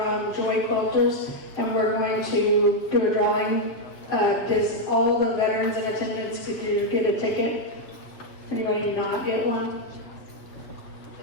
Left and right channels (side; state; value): right; late; 7.7 ms